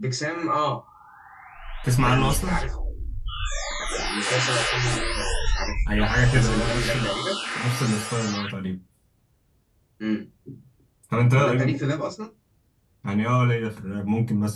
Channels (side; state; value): both; identical; correlation 1.00